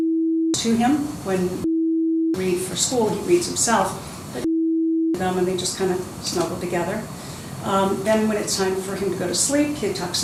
to him when he reads for school. He reads himself, but them and they just kind of snuggle together. Then when it's time for him to go to sleep, he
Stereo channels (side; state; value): both; identical; correlation 1.00